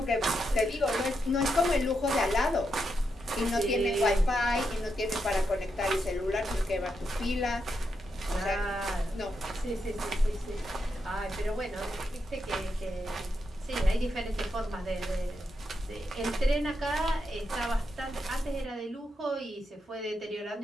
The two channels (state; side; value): normal; both; correlation 0.83